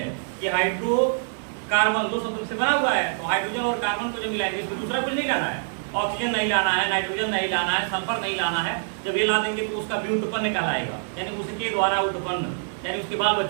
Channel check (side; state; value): left; silent; digital silence